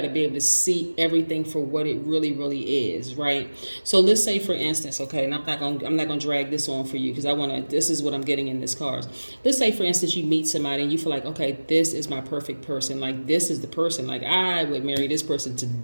to be able to see everything for what it really, really is, right? So let's say, for instance, okay, and I'm not gonna drag this on for you because this is what I'm getting in this card. Let's say, for instance, you meet somebody and you feel like, okay, this is my perfect person. Like, this is the person. Like, I would marry this person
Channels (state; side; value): inverted; both; correlation -1.00